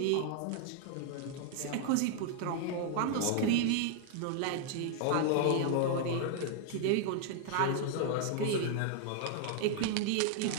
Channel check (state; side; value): different; both; correlation 0.00